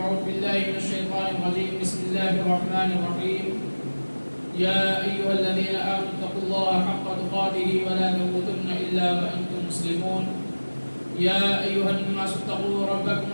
بالله من الشيطان الرجيم. بسم الله الرحمن الرحيم. يا أيها الذين آمنوا اتقوا الله حق تقاته ولا تموتن إلا وأنتم مسلمون. يا أيها الناس اتقوا ربكم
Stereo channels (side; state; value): both; inverted; correlation -1.00